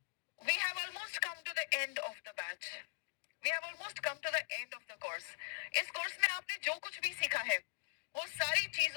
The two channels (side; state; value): right; silent; digital silence